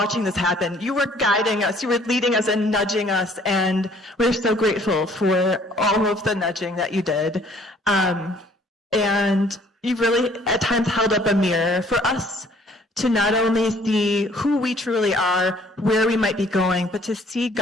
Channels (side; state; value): both; normal; correlation 0.59